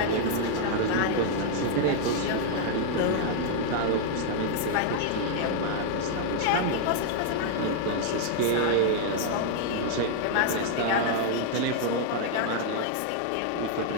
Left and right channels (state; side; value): different; both; correlation -0.01